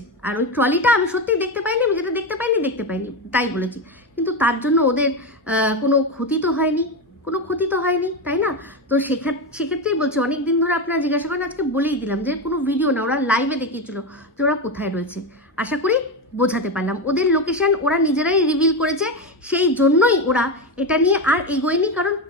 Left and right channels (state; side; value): normal; both; correlation 0.14